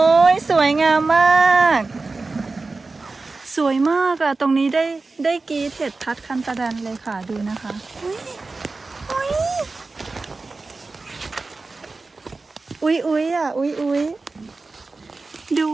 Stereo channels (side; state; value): left; quieter; 3.7 dB